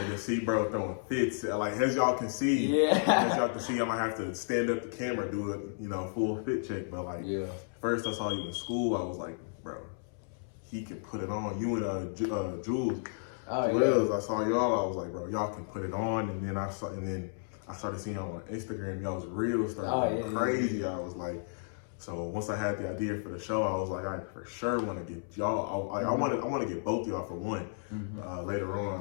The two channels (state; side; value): silent; right; 56 dB below the other